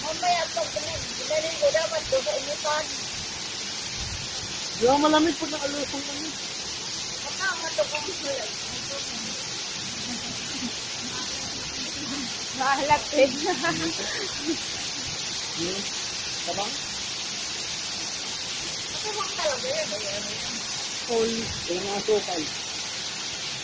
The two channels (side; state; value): both; identical; correlation 1.00